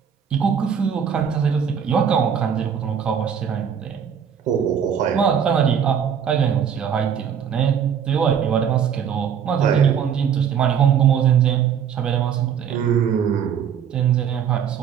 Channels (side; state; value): left; quieter; 8.0 dB